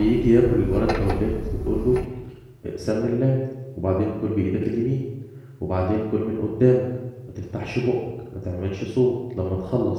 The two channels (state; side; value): identical; both; correlation 1.00